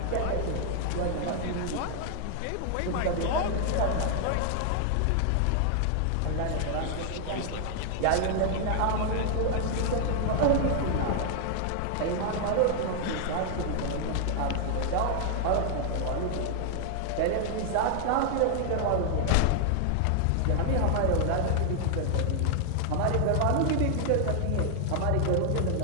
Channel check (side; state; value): both; different; correlation 0.00